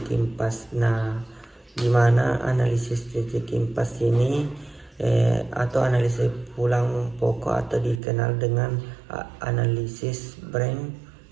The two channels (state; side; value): drops out; left; at 8.0 s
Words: impas. Nah, gimana analisis titik impas ini atau analisis pulang pokok atau dikenal dengan analisis break